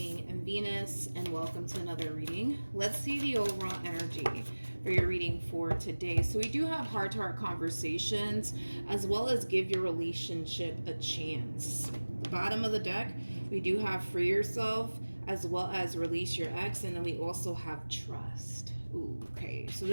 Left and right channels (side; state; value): both; inverted; correlation -1.00